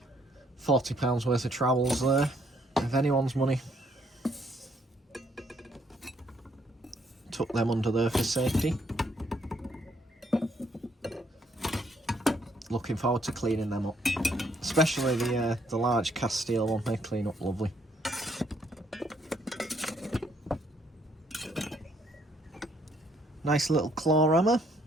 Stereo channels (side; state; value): both; normal; correlation 0.69